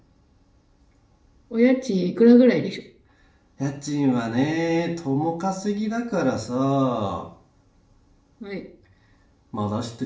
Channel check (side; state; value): both; identical; correlation 1.00